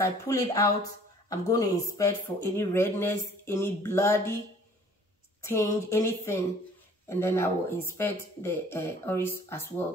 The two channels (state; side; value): normal; both; correlation 0.53